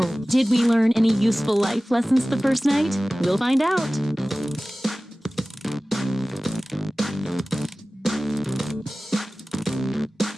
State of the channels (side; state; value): both; normal; correlation 0.97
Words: did we learn any useful life lessons the first night? We'll find out.